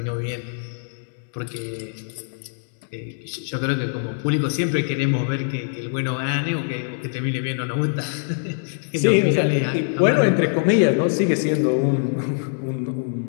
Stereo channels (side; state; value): right; silent; 61 dB below the other